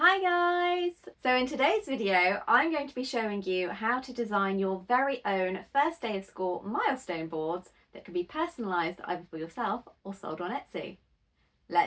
Hi guys! So in today's video, I'm going to be showing you how to design your very own first day of school milestone boards that can be personalised either for yourself or sold on Etsy.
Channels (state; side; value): identical; both; correlation 1.00